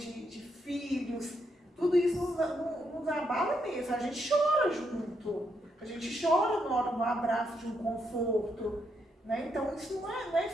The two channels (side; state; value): both; normal; correlation 0.79